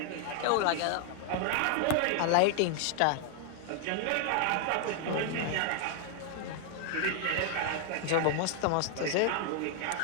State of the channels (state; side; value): different; both; correlation 0.00